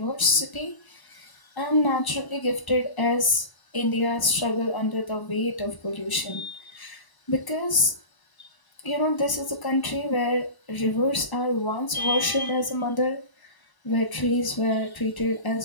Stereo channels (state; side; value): late; right; 1.0 ms